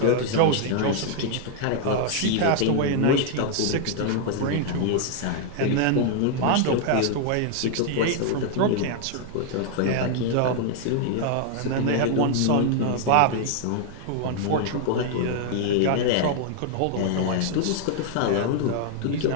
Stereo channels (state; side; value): different; both; correlation 0.00